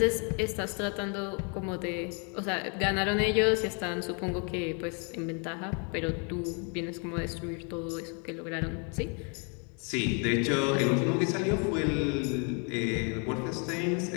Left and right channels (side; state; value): right; quieter; 36.7 dB